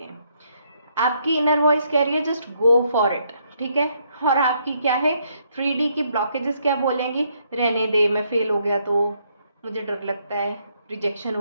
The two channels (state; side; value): inverted; both; correlation -0.73